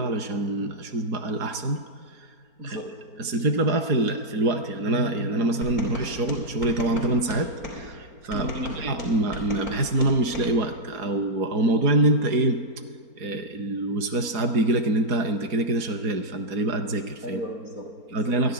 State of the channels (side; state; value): left; late; 4.4 ms